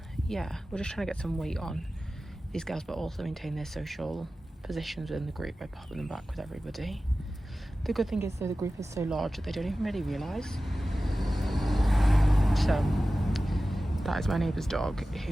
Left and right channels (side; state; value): both; normal; correlation 0.95